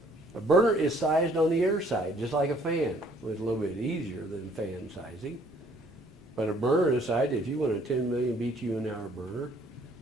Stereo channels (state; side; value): normal; both; correlation 0.61